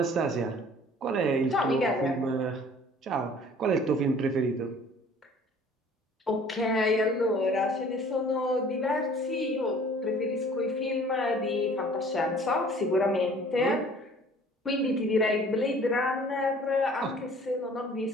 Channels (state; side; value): normal; both; correlation 0.51